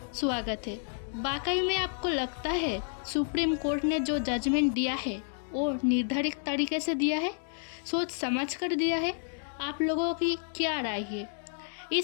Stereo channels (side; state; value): right; silent; 57 dB below the other